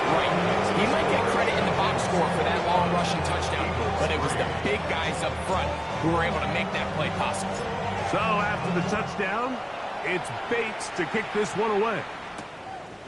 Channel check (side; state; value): both; identical; correlation 1.00